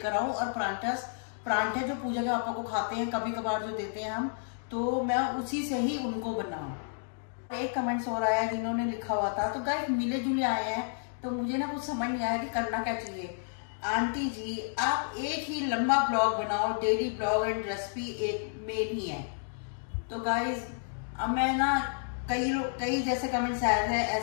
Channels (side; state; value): right; silent; digital silence